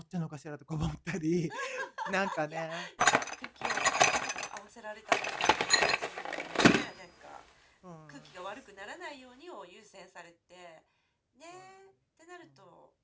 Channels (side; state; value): both; identical; correlation 1.00